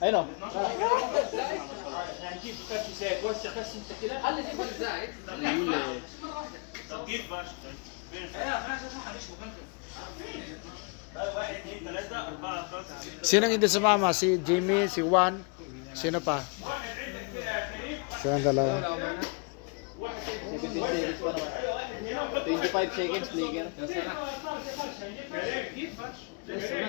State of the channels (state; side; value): quieter; right; 35.3 dB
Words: اي نو يعني كيف فرش زيت وسع بس انت كده خلي دي فرش زايد كيف فرش واحد اثنين ثلاثة أربعة خمسة ستة Sinong hindi sumama? Si Jimmy, si Juan, sino pa? Silang dalawa. 17 seconds pa naman. 25 seconds, Flicker.